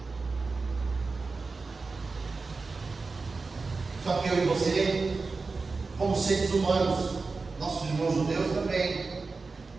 Só que eu e você, como seres humanos, nossos irmãos judeus também,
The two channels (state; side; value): quieter; left; 4.1 dB